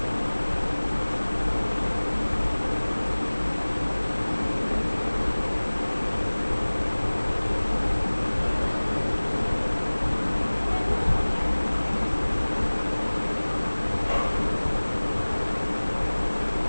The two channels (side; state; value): both; inverted; correlation -1.00